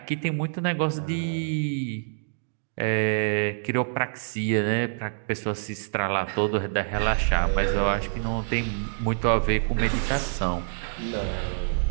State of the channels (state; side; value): silent; left; digital silence